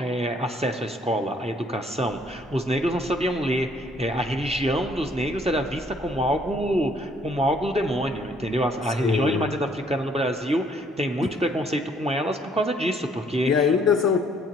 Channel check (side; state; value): both; normal; correlation 0.64